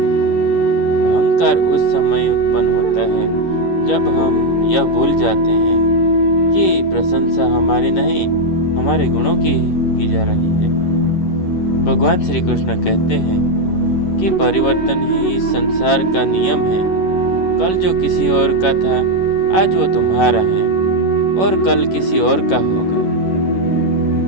अहंकार उस समय उत्पन्न होता है जब हम यह भूल जाते हैं कि प्रशंसा हमारी नहीं हमारे गुणों की जा रही है। भगवान श्री कृष्ण कहते हैं कि परिवर्तन ही इस संसार का नियम है। कल जो किसी और का था आज वो तुम्हारा है और कल किसी और का होगा।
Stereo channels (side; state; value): right; late; 11 ms